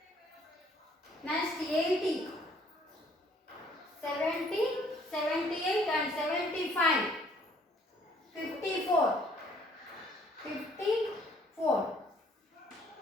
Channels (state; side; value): normal; both; correlation 0.62